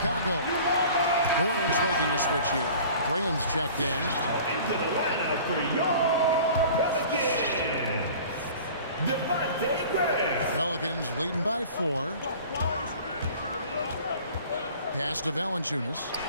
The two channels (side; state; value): both; inverted; correlation -0.44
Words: New Orleans making a switch here. Graham's checked in. Into the lineup for your Pelicans, Devontae Graham. Pelicans leading by 4. Pass to Valanciunas.